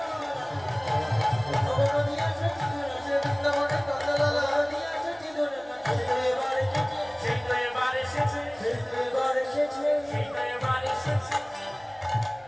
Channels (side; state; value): right; noise; hum, 27 dB below the sound